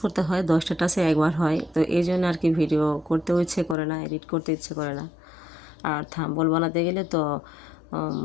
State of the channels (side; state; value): right; drops out; at 3.8 s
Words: করতে হয়, 10টা টাচে একবার হয়। তো এই জন্য আর কি ভিডিও করতেও ইচ্ছে করে না, এডিট করতে ইচ্ছে করে না। আর থাম্বনেল বানাতে গেলে তো